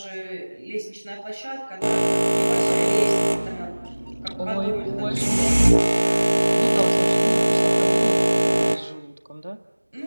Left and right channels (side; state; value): both; inverted; correlation -1.00